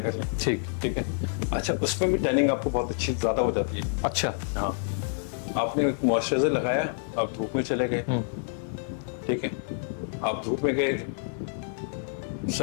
लें। ठीक है। अच्छा, उसमें भी टैनिंग आपको बहुत अच्छी ज़्यादा हो जाती है। अच्छा। हाँ, आपने एक मॉइस्चराइजर लगाया, आप धूप में चले गए, ठीक है, आप धूप में गए,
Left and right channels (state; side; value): silent; right; 59 dB below the other